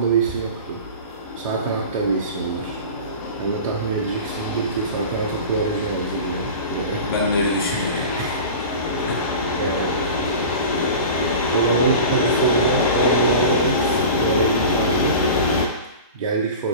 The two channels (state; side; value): inverted; both; correlation -0.35